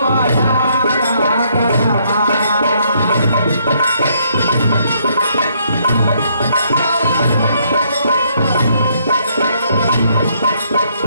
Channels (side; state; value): both; inverted; correlation -0.70